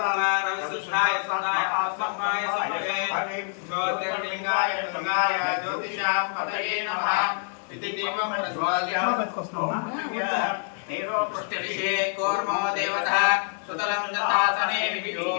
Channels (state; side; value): silent; right; 56 dB below the other